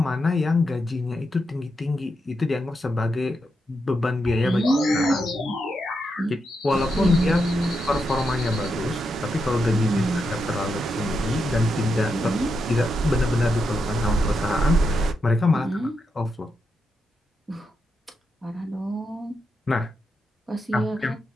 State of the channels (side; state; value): both; normal; correlation 0.84